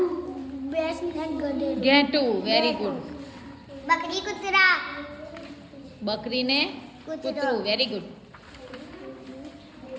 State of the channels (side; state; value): both; identical; correlation 1.00